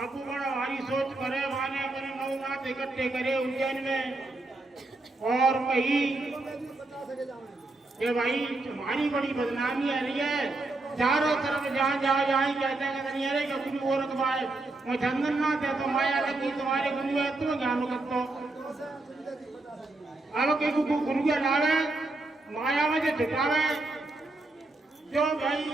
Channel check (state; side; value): quieter; left; 3.0 dB